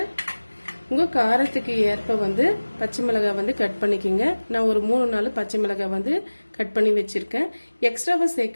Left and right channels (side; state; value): both; inverted; correlation -1.00